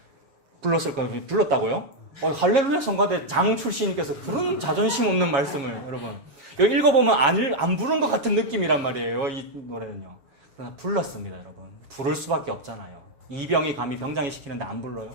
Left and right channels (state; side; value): late; left; 7.3 ms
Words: 불렀을까요? 불렀다고요? 할렐루야 성가대 장 출신님께서 그런 자존심 없는 말씀을 여러분. 이거 읽어보면 안 부른 것 같은 느낌이란 말이에요. 이 노래는요. 그러나 불렀습니다, 여러분. 부를 수밖에 없잖아요. 이병이 감히 병장이 시키는데 안 불러요?